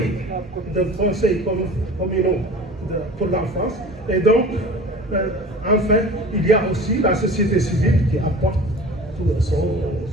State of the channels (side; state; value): both; normal; correlation 0.40